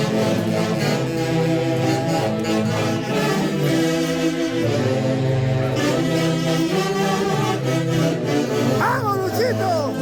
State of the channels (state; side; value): identical; both; correlation 1.00